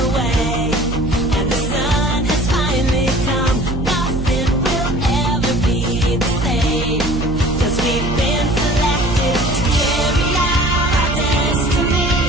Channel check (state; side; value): noise; right; hum, 4 dB below the sound